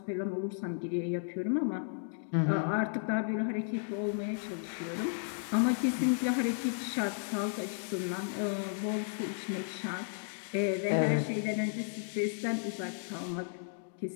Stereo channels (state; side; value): silent; right; digital silence